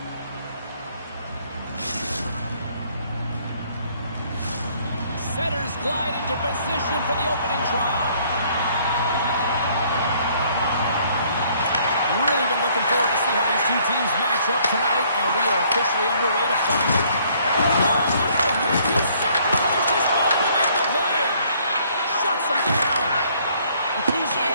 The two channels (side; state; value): both; inverted; correlation -0.63